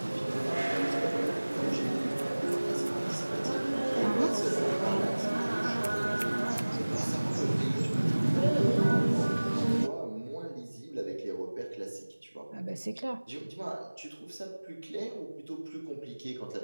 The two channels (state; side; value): inverted; both; correlation -1.00